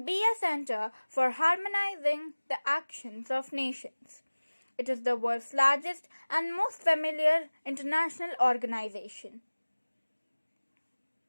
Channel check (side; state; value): both; inverted; correlation -1.00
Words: be a center for harmonizing the actions of nations. It is the world's largest and most familiar international organization.